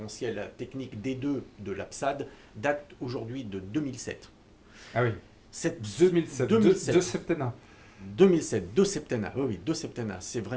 technique D2 de l'APSAD, date aujourd'hui de 2007. Ah oui, 2007. De septennat. 2007, deux septennats, oui, deux septennats, c'est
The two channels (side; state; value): both; identical; correlation 1.00